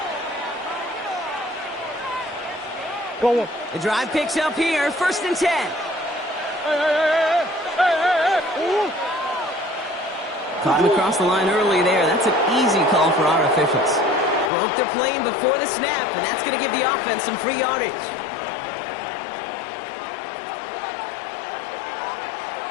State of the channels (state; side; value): drops out; right; at 14.5 s